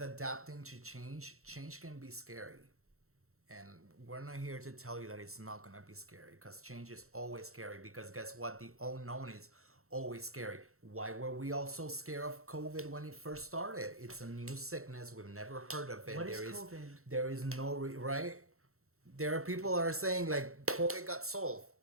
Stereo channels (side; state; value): left; late; 0.63 ms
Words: adapting to change can be scary. And we're not here to tell you that it's not going to be scary, because change is always scary, because guess what? The unknown is always scary. Why were we all so scared of COVID when it first started? It's a new sickness. We've never heard of it. What is COVID? There is no, right? There are people that are saying like COVID got solved.